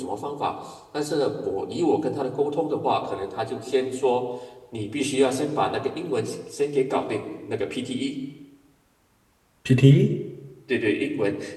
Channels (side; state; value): both; identical; correlation 1.00